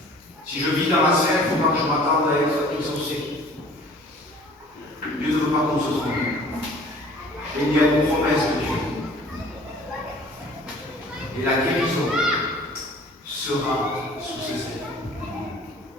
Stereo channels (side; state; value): both; normal; correlation 0.50